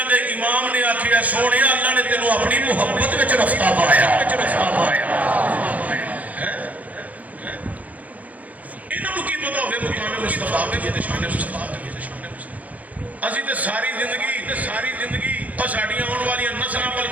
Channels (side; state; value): left; late; 0.075 ms